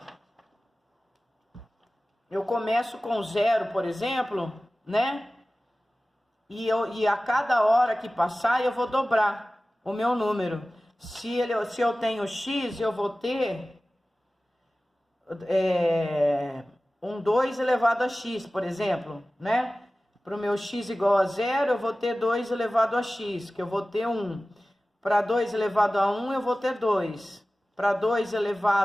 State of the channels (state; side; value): normal; both; correlation 0.97